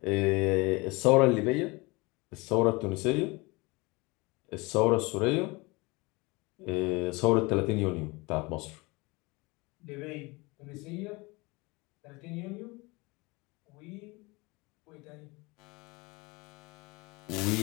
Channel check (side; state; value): right; quieter; 24.9 dB